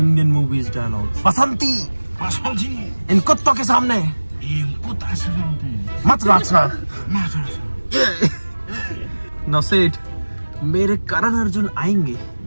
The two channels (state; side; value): inverted; both; correlation -1.00